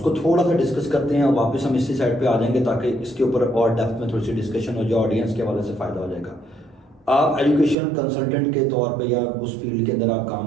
थोड़ा सा डिस्कस करते हैं और वापस हम इसी साइड पे आ जाएंगे ताकि इसके ऊपर और डेप्थ में थोड़ी सी डिस्कशन हो जाए, ऑडियंस के हवाले से फ़ायदा हो जाएगा। आप एजुकेशन कंसल्टेंट के तौर पे या उस फील्ड के अंदर आप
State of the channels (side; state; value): left; drops out; at 7.8 s